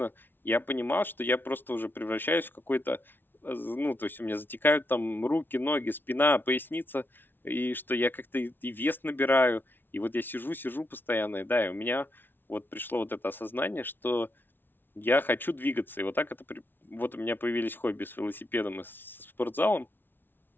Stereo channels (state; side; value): late; right; 0.099 ms